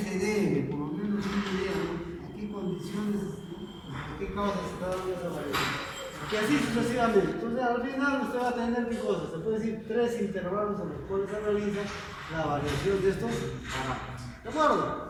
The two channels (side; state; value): both; identical; correlation 1.00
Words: debe, por lo menos una idea, ¿no?, a qué condiciones, a qué causas se está dando esa variación. Y así sucesivamente. Entonces al final usted va a tener qué cosas, se puede decir 3 intervalos en los cuales se realiza la variación de estos parámetros. ¿De acuerdo?